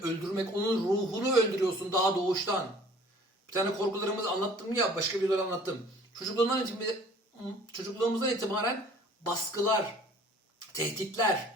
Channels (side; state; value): both; normal; correlation 0.52